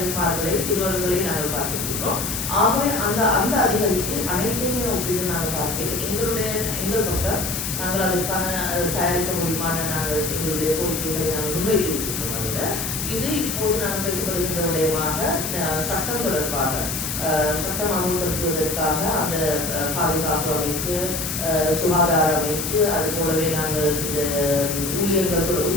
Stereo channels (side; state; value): left; noise; hiss, 3 dB below the sound